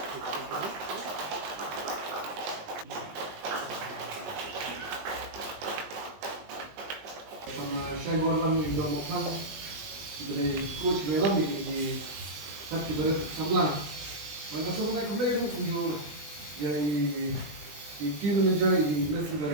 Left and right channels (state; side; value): late; left; 20 ms